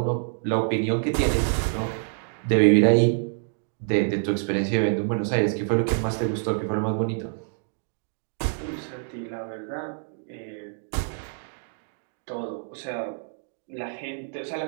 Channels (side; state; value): left; silent; digital silence